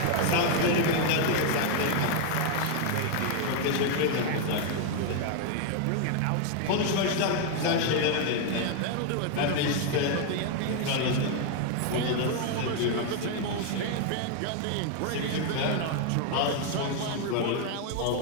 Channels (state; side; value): different; both; correlation 0.00